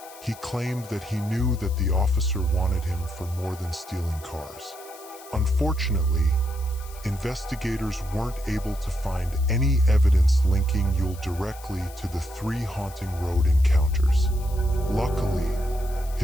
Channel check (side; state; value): left; noise; hiss, 19 dB below the sound